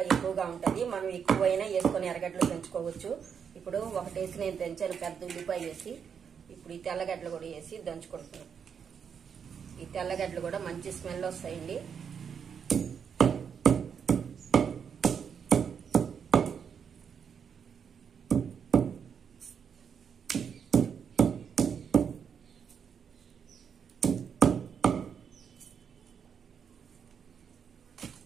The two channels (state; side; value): quieter; left; 7.1 dB